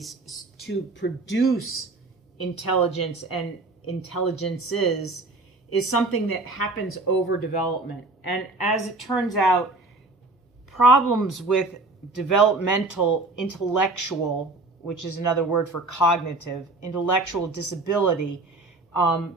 to produce intelligence and intelligences is something that happens over development. And as it turns out, problems with developmental intellectual, which is another word for cognitive, intellectual disability,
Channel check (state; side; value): quieter; left; 3.2 dB